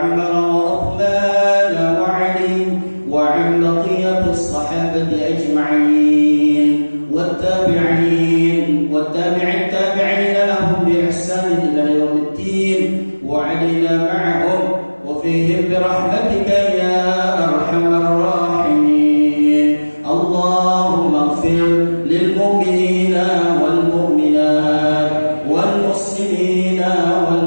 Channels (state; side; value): inverted; both; correlation -1.00